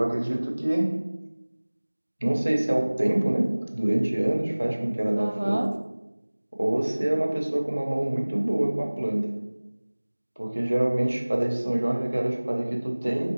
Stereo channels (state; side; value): inverted; both; correlation -1.00